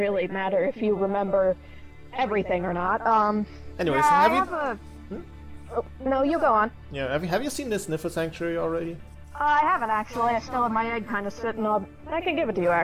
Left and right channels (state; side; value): identical; both; correlation 1.00